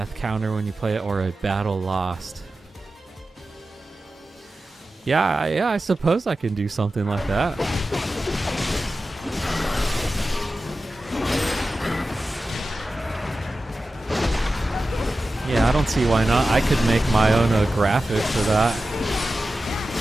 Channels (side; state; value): both; normal; correlation 0.93